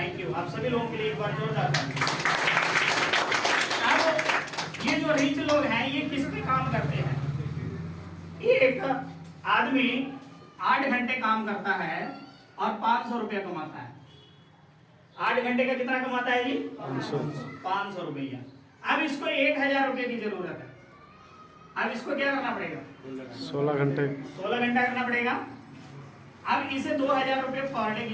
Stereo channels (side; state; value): both; identical; correlation 1.00